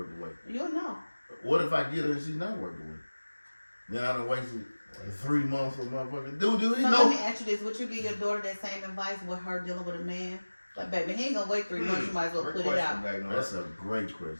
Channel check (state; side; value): inverted; both; correlation -1.00